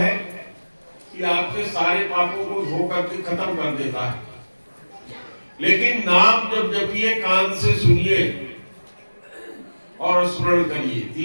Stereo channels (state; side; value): inverted; both; correlation -1.00